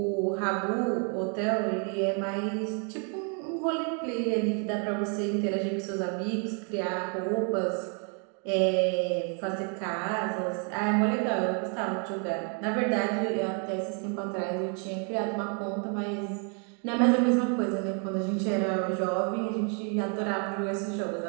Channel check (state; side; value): quieter; left; 39.5 dB